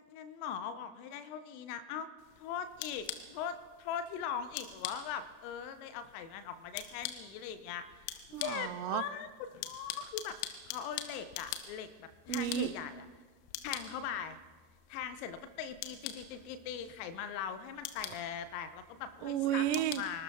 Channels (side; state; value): right; late; 36 ms